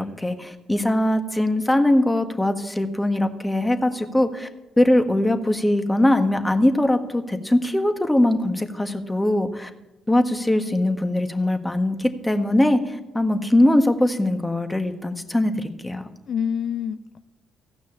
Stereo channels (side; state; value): both; normal; correlation 0.96